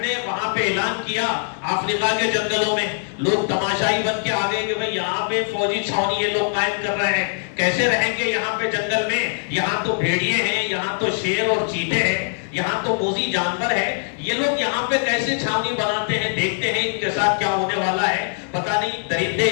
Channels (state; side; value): silent; right; 64 dB below the other